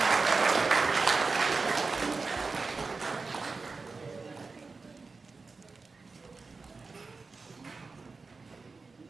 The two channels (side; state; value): left; quieter; 4.2 dB